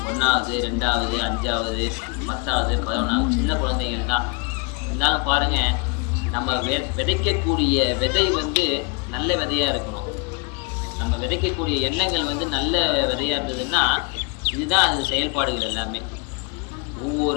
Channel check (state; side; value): quieter; right; 32.9 dB